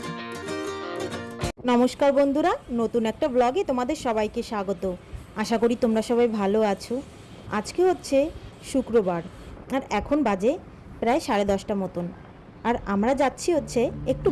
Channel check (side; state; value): both; identical; correlation 1.00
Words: নমস্কার বন্ধুরা, নতুন একটা ব্লগে তোমাদের সবাইকে স্বাগত। আশা করি তোমরা সবাই ভালো আছো। আজকে হচ্ছে শুক্রবার আর এখন বাজে প্রায় 10:30 মতন। আর আমরা যাচ্ছি হচ্ছে একটু